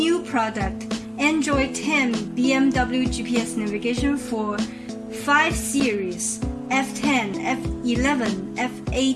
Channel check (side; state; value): both; identical; correlation 1.00